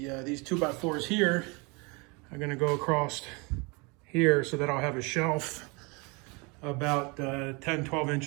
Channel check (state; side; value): quieter; left; 28.9 dB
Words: 2x4s here are gonna go across here so that I'll have a shelf about 10, 12